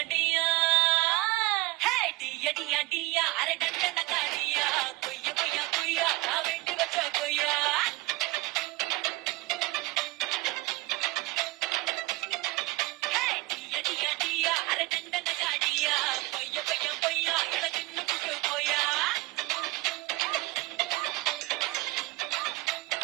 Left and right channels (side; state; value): left; quieter; 21.1 dB